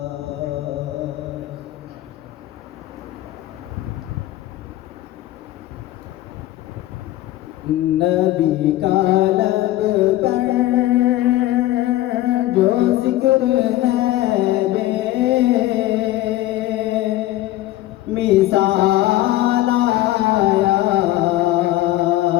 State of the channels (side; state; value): right; quieter; 15.4 dB